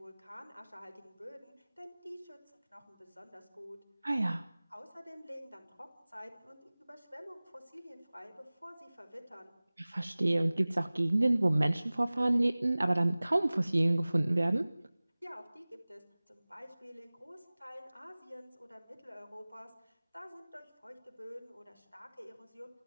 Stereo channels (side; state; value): both; inverted; correlation -0.99